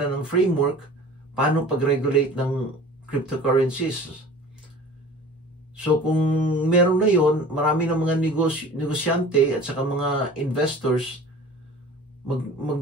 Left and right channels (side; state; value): both; normal; correlation 0.42